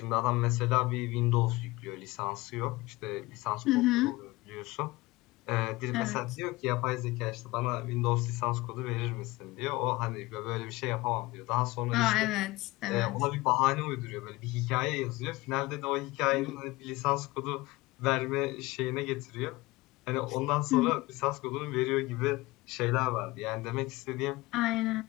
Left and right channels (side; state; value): right; quieter; 20.8 dB